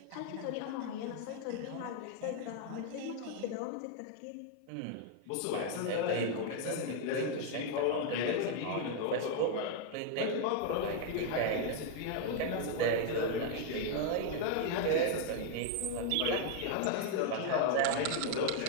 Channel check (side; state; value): both; different; correlation 0.00